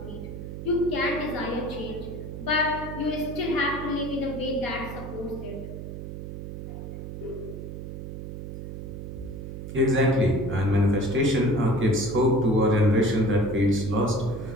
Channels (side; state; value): right; noise; hum, 9 dB below the sound